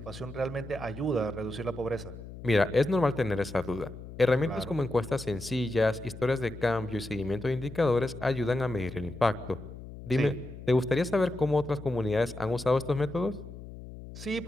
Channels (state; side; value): noise; left; hum, 13 dB below the sound